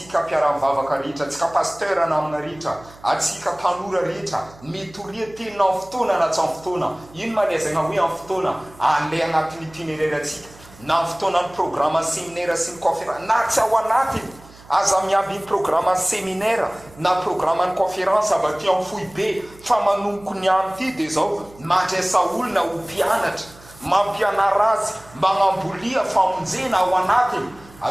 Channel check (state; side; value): noise; right; hum, 23 dB below the sound